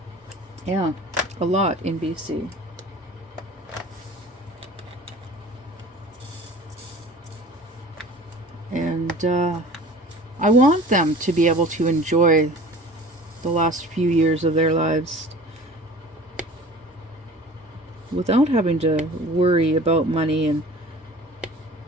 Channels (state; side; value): normal; both; correlation 0.43